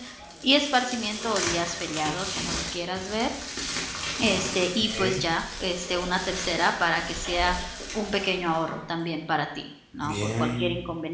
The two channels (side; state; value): both; identical; correlation 1.00